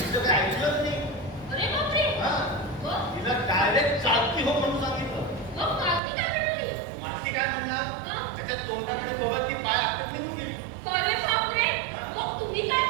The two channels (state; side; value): drops out; left; at 6.0 s